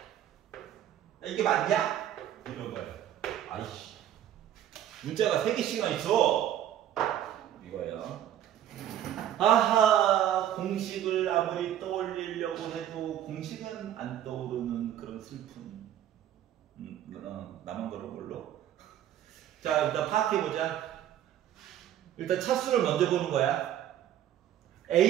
이게 맞냐? 이런 거예요. 아이씨, 문자가 3개씩이나 있어. 이거예요. 아하, 공식을 아무리 떠올리려고 해도 공식은 안 떠오르는 그런 슬픔. 나만 그런 걸로. 자, 일단 파악해보자. 일단 차수를 먼저 보는 거야.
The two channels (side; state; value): left; quieter; 11.2 dB